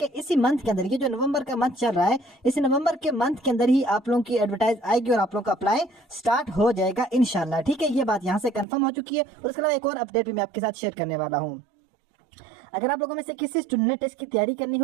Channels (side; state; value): left; drops out; at 8.7 s